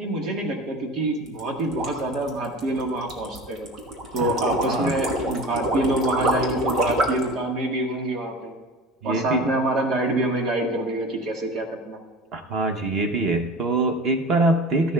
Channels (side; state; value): both; normal; correlation 0.36